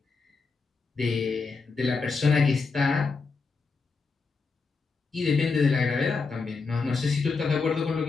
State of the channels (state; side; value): quieter; right; 4.5 dB